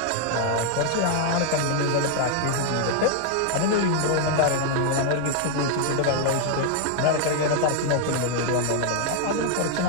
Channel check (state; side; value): different; both; correlation 0.00